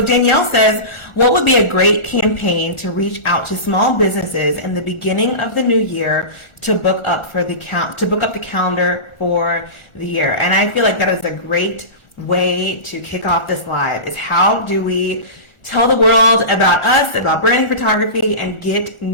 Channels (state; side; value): late; right; 1.4 ms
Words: Danielle says, what would be a great campaign to reach out to small businesses in the beginning of the new year to book up the calendar for the year? And I feel like that is a great way to kick off this live, is how do we tell the world about us, about branding photography, and get